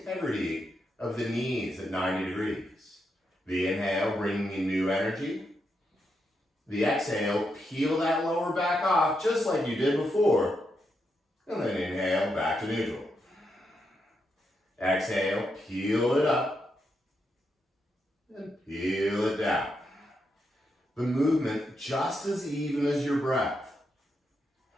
of the knees at 90 degrees. The inhale, bringing in new energy. The exhale, peel that lower back off just like you did before. And then inhale, back to neutral. Exhale, peel it up. And peel it down. The movement just as even as your breath.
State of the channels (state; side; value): normal; both; correlation 0.83